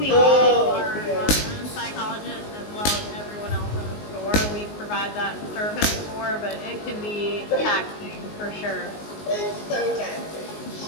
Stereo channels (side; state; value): right; late; 19 ms